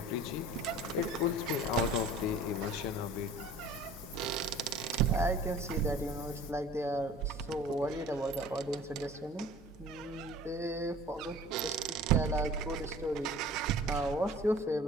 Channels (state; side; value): normal; both; correlation 0.45